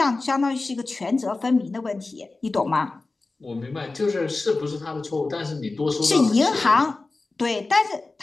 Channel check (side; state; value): right; quieter; 3.5 dB